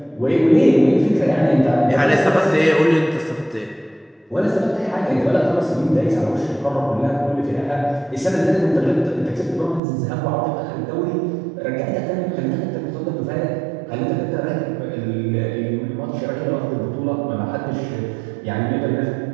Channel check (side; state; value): left; drops out; at 9.8 s